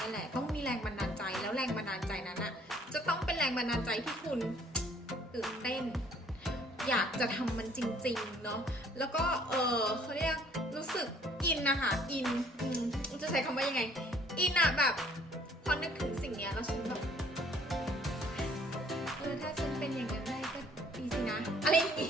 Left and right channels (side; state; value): both; normal; correlation 0.59